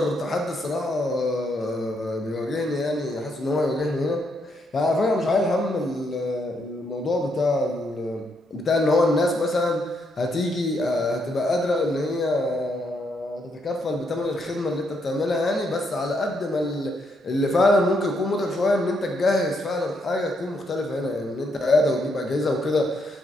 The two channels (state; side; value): normal; both; correlation 0.76